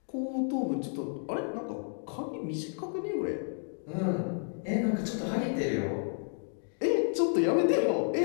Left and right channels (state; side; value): silent; right; 57 dB below the other